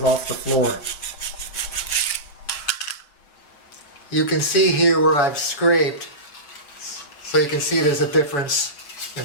off the floor. You can see here where I've scraped, so you can see there's a difference in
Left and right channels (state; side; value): late; right; 7.0 ms